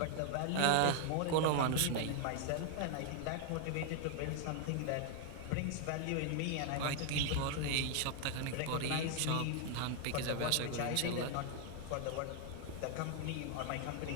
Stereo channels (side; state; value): both; different; correlation 0.00